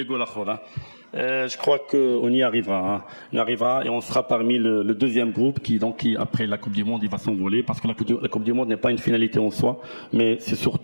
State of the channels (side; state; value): both; inverted; correlation -1.00